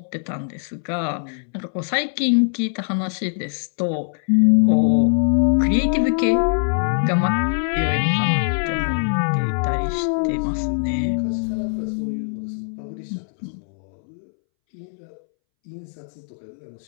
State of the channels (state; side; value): silent; right; 64 dB below the other